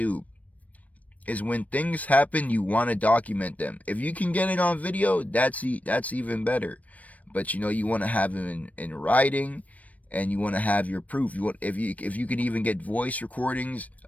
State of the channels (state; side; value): late; right; 0.070 ms